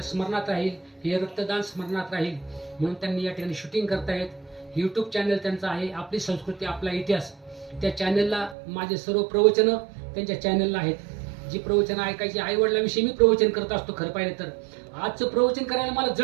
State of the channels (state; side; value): drops out; left; at 8.6 s